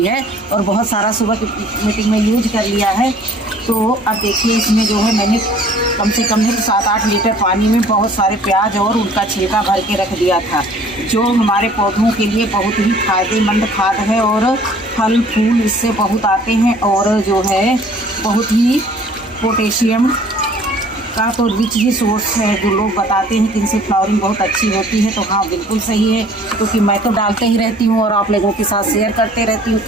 है और बहुत सारा सुबह की मीटिंग में यूज कर लिया है। तो अब देखिए इसमें जो है मैंने कम से कम नहीं तो 7-8 लीटर पानी में बहुत सारे प्याज और उनका छिलका भर के रख दिया था, जो हमारे पौधों के लिए बहुत ही फायदेमंद खाद है और फल फूल इससे बहुत आते हैं। और जो है बहुत ही पोटेशियम का तो रिच ही सोर्स है। जो लोग बताते हैं कि इनसे फ्लावरिंग बहुत अच्छी होती है, तो हाँ बिल्कुल सही है, क्योंकि मैं तो डालते ही रहती हूँ और आप लोगों के साथ शेयर करते रहती हूँ।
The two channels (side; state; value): both; normal; correlation 0.53